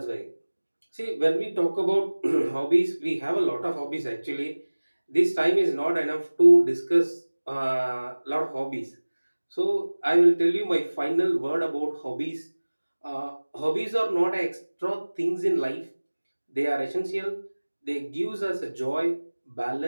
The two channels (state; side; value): inverted; both; correlation -1.00